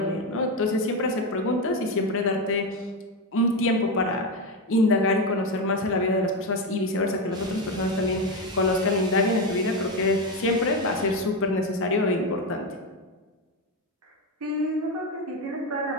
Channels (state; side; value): normal; both; correlation 0.12